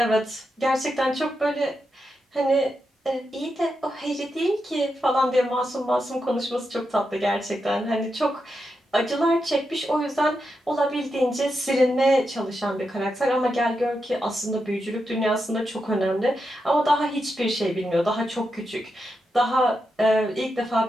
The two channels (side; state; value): both; normal; correlation 0.86